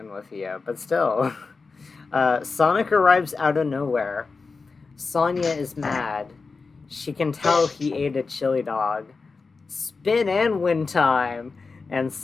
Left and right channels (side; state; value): right; quieter; 4.4 dB